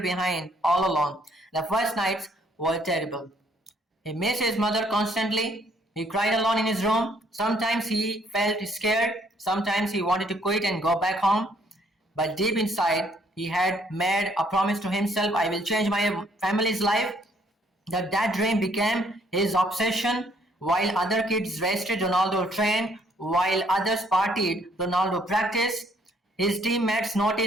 all alone. The first nights were terrible. He missed his mother constantly. He cried alone in his room. Sometimes he felt scared. Sometimes he wanted to quit and go back home. But deep inside, he had made a promise to himself, I will change my family's life. That dream became his obsession. While other kids rested, Ronaldo trained. While others partied, Ronaldo practiced. His teammates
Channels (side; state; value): both; normal; correlation 0.66